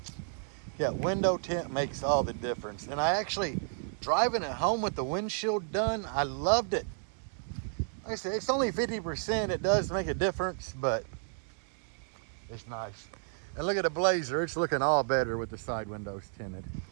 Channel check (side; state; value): left; silent; 56 dB below the other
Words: yeah, window tint makes all the difference. And I actually, driving it home with the windshield done, I loved it. Like I said, it's only 50%. It does make a difference, but it's nice. And look at the Blazer. It's looking all better with the side windows tinted.